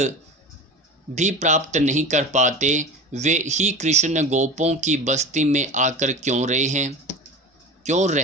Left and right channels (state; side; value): normal; both; correlation 0.32